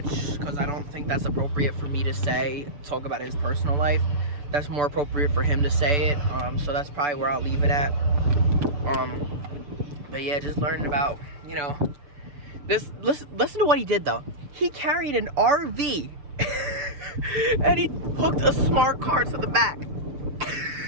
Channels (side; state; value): left; late; 6.8 ms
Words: because I don't think that's appropriate for me to talk about his personal life. That's more appropriate for him to say it. So that's probably where I'll leave it at. But yeah, just learning about, you know, this. Listen to what he did though. He carried an RV and he hooked a smart car to the back.